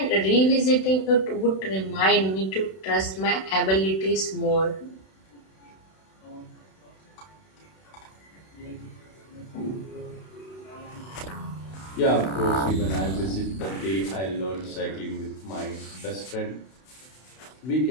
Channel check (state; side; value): late; right; 32 ms